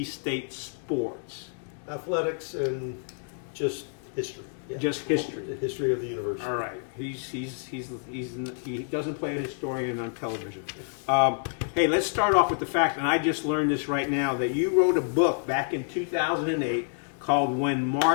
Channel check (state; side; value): silent; right; 59 dB below the other